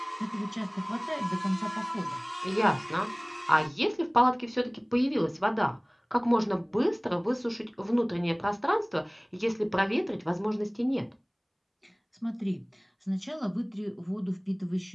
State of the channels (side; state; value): both; identical; correlation 1.00